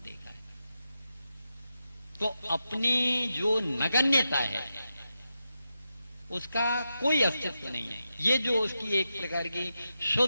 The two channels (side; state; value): both; inverted; correlation -0.88